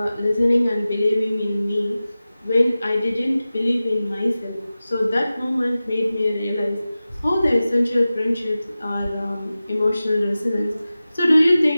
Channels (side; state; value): both; inverted; correlation -0.96